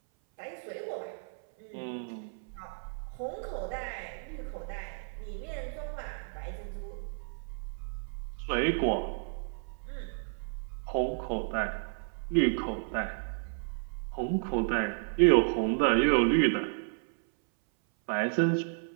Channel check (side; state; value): left; silent; 56 dB below the other